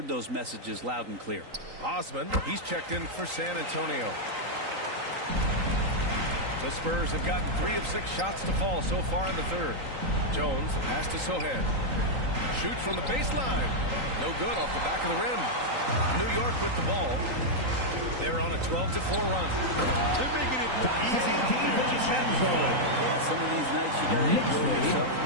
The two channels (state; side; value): late; left; 3.9 ms